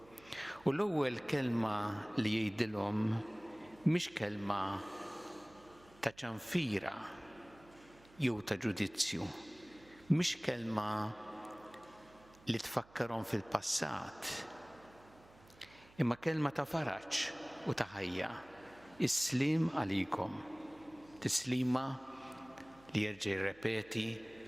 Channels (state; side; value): noise; right; hum, 25 dB below the sound